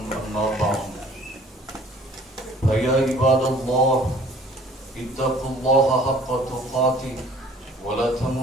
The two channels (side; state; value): both; normal; correlation 0.53